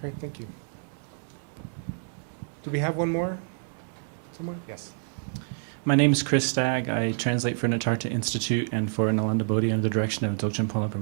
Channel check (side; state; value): left; silent; 59 dB below the other